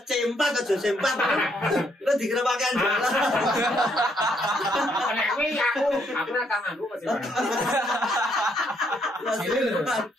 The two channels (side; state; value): both; normal; correlation 0.72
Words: C4 aja C4. Lu dikira pakaian jelas. Nek kuwi aku ora tau nganggo kok C4.